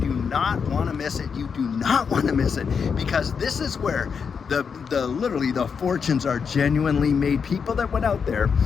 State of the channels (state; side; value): quieter; right; 6.2 dB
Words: not want to miss it. You do not want to miss it, because this is where literally the fortunes are genuinely made. People that went out there